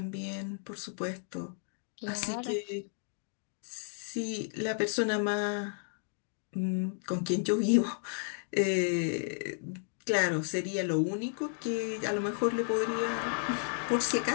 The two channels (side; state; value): right; silent; digital silence